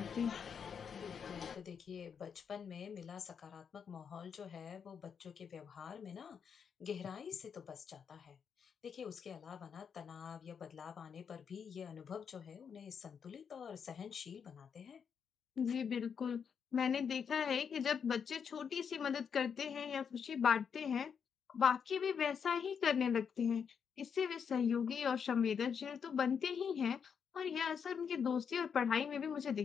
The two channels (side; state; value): right; quieter; 6.9 dB